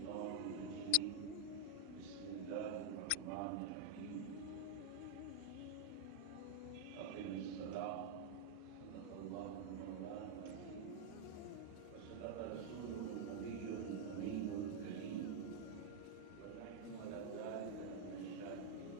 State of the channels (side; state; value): both; different; correlation 0.00